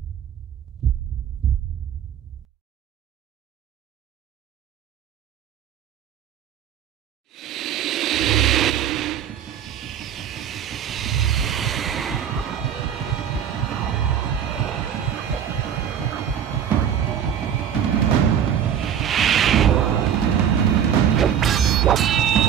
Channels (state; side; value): quieter; left; 8.9 dB